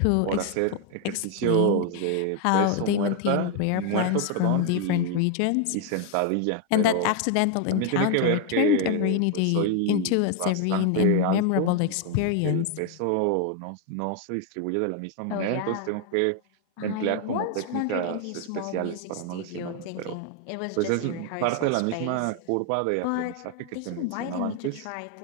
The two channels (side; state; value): both; different; correlation 0.01